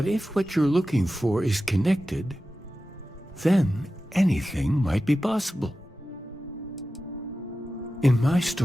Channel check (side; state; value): both; normal; correlation 0.93